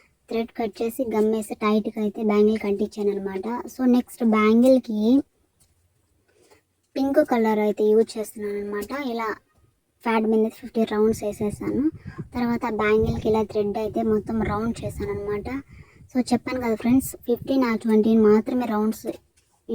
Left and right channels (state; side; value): identical; both; correlation 1.00